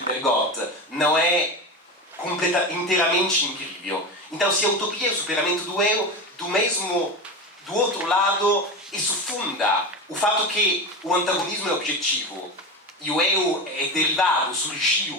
Bergotte, não é inteiramente incrível. Então, se a utopia é o superamento do eu, do outro lado, isso funda o fato que o antagonismo é objetivo e o eu é derivado,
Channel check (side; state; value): both; normal; correlation 0.23